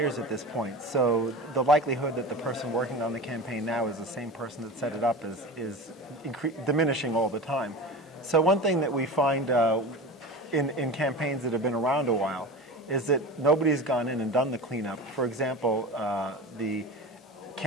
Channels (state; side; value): normal; both; correlation 0.31